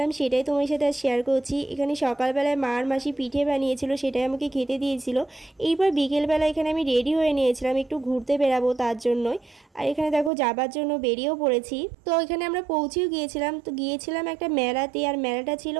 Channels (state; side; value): drops out; left; at 10.3 s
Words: সেটাই তোমার সাথে আজ শেয়ার করছি। এখানে সকালবেলায় মার মাসি পিঠে বানিয়েছিল, সেটাই আমাকে খেতে দিয়েছিল। এইবার বিকেলবেলা এখানে আমি রেডি হয়ে নিয়েছিলাম, একটু ঘুরতে বেরাবো তার জন্যই। আর এখানে দেখো যাবার জন্য বেরিয়েও পড়েছি। তো এখানে আমরা পৌঁছেও গিয়েছিলাম। তো গিয়েছিলাম একটা মেলাতে, আর মেলাটা ছিল